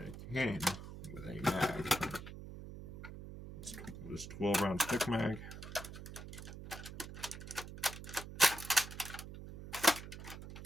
it came with a mag. It's this 12-round stick mag.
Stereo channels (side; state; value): right; noise; hum, 11 dB below the sound